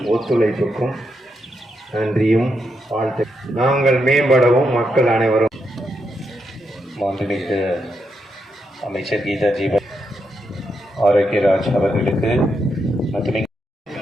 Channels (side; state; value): both; normal; correlation 0.82